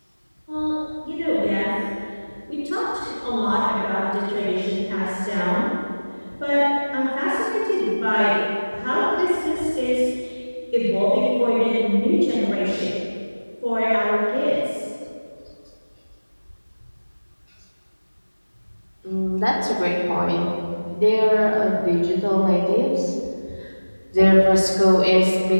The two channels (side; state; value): both; inverted; correlation -1.00